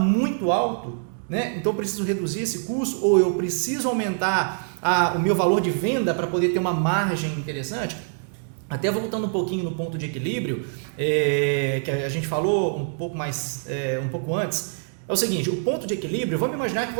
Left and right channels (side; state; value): left; silent; digital silence